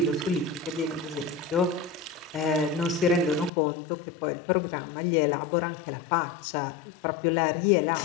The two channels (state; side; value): drops out; right; at 3.5 s